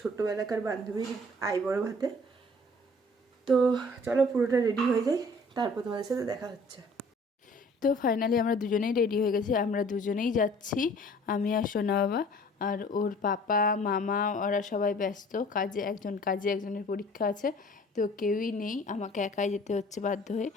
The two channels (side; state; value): both; normal; correlation 0.52